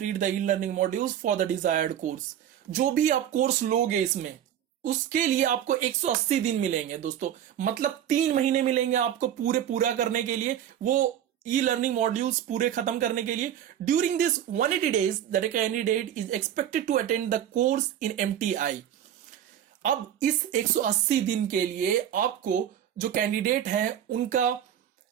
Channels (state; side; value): quieter; left; 10.3 dB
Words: the e learning modules for the desired course. जो भी आप कोर्स लोगे इसमें, उसके लिए आपको 180 दिन मिलेंगे दोस्तों, मतलब 3 महीने मिलेंगे आपको पूरा करने के लिए, वो ई लर्निंग मॉड्यूल्स पूरे खत्म करने के लिए। During this 180 days that candidate is expected to attend the course in MTI. अब इस 180 दिन के लिए आपको जो कैंडिडेट है उनका